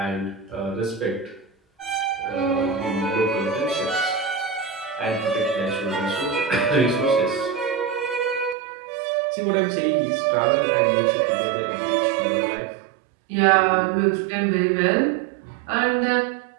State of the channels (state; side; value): drops out; left; at 8.6 s